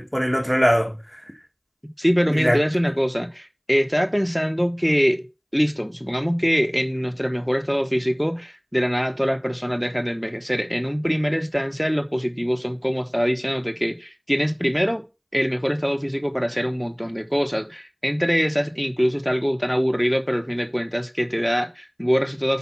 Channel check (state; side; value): identical; both; correlation 1.00